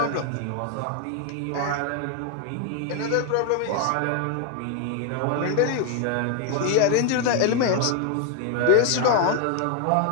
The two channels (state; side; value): different; both; correlation 0.00